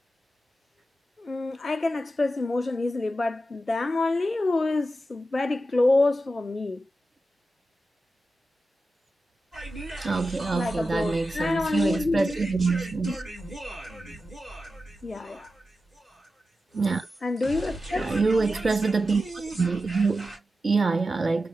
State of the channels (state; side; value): normal; both; correlation 0.91